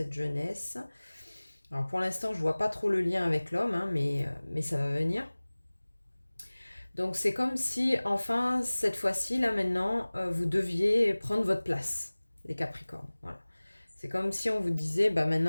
jeunesse. Alors pour l'instant, je vois pas trop le lien avec l'homme, hein, mais ça va venir. Donc c'est comme si, enfin, cette fois-ci, là maintenant, vous deviez prendre votre place, les Capricornes. Voilà. C'est comme si on vous disait, bah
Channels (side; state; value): both; inverted; correlation -1.00